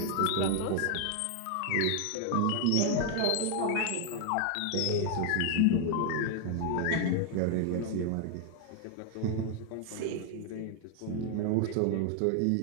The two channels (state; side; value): different; both; correlation 0.00